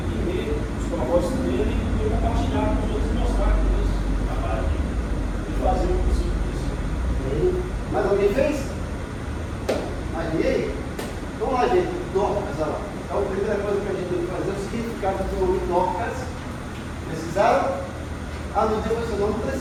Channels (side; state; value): both; identical; correlation 1.00